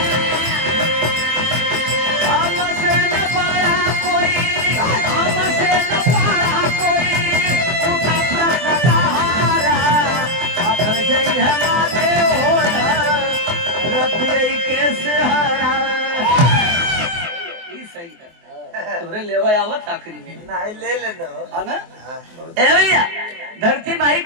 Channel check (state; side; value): late; left; 24 ms